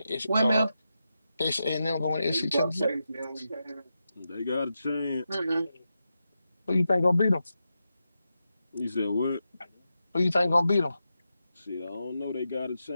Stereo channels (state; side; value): inverted; both; correlation -0.88